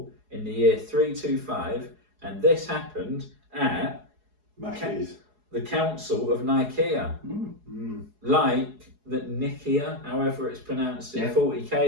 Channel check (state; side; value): late; left; 4.8 ms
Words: in the year 325, and this happened at the Council of Nicaea. Like the Nicaea, however it's pronounced in